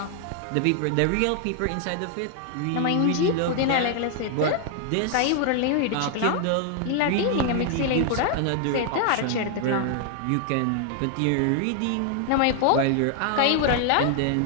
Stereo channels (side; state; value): both; different; correlation 0.00